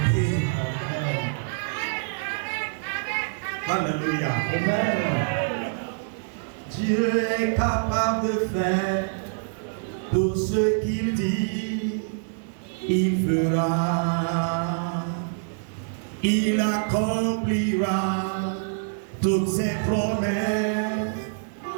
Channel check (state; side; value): silent; left; digital silence